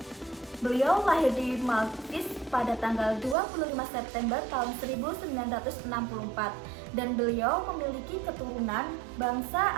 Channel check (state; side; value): drops out; left; at 3.4 s